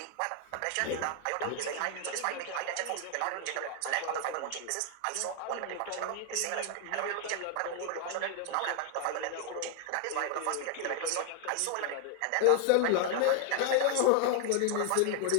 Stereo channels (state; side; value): different; both; correlation 0.00